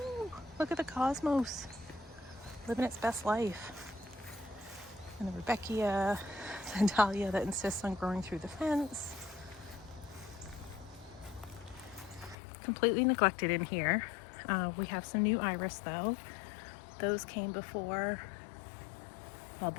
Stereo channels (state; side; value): drops out; right; at 12.4 s